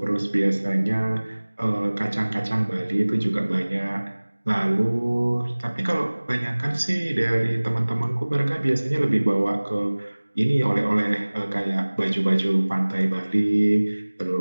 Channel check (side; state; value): both; inverted; correlation -1.00